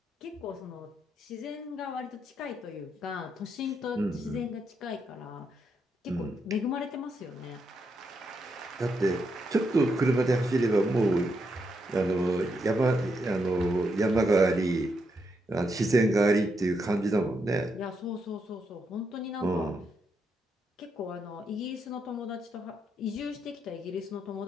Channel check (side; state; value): both; normal; correlation 0.80